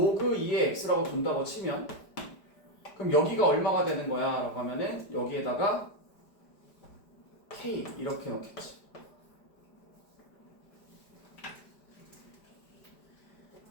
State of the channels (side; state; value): right; late; 5.0 ms